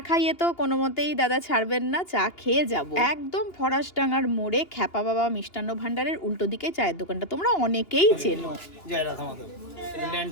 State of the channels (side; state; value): right; late; 2.8 ms